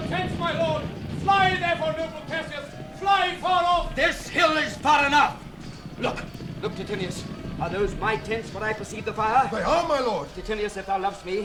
tents, my lord! Fly, therefore, noble Cassius! Fly far off! This hill is far enough. Look, Titinius. Are those my tents where I perceive the fire? They are, my lord. Titinius, if thou lovest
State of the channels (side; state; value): both; identical; correlation 1.00